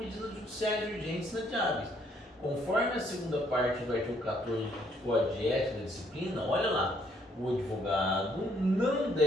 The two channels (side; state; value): both; normal; correlation 0.68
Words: judiciais urgentes inadiáveis. Conforme a segunda parte do artigo 14 do Código de Ética da Disciplina, olha lá, o advogado não